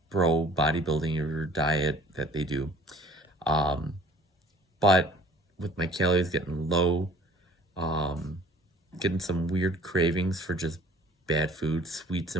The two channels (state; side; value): normal; both; correlation 0.51